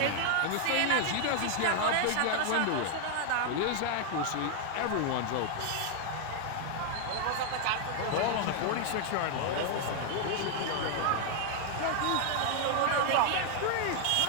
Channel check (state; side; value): different; both; correlation 0.00